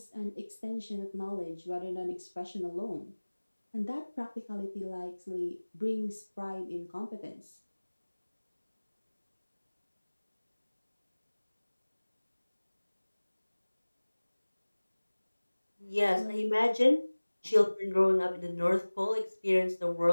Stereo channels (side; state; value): both; inverted; correlation -1.00